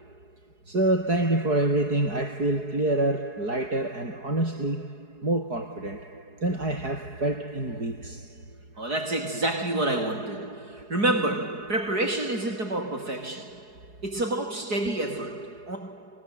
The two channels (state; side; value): late; left; 4.8 ms